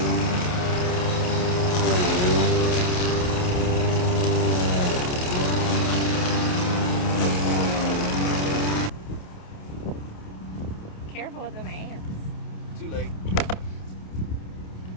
Careful with them ants. Too late.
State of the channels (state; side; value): late; right; 28 ms